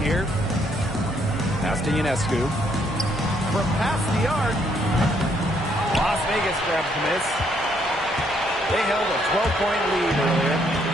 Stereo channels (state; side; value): normal; both; correlation 0.71